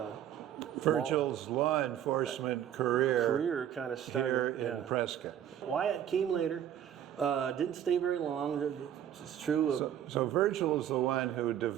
law enforcement career kind of started here in Prescott. Wyatt came later, didn't stay very long. It's true. So Virgil is the one who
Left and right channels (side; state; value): left; quieter; 10.4 dB